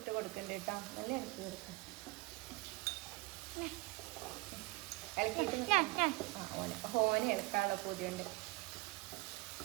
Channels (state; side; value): quieter; left; 24.0 dB